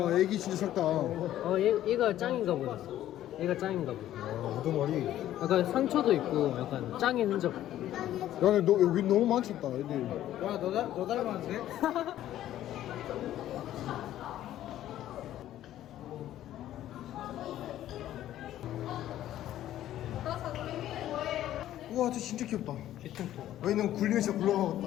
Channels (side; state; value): right; quieter; 12.8 dB